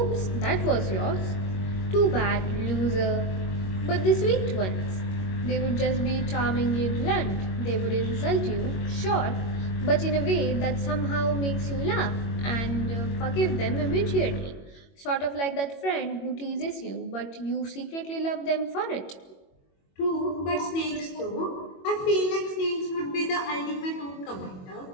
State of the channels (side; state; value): right; late; 21 ms